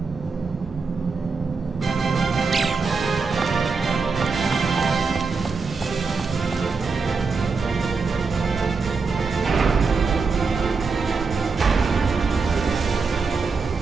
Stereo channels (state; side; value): quieter; left; 4.7 dB